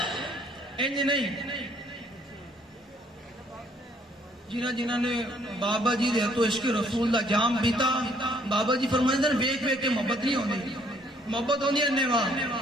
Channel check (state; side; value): normal; both; correlation 0.64